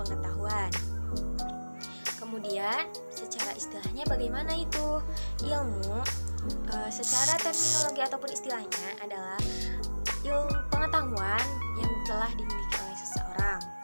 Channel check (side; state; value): both; inverted; correlation -1.00